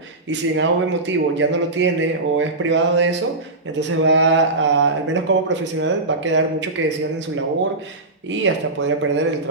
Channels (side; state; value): left; quieter; 3.0 dB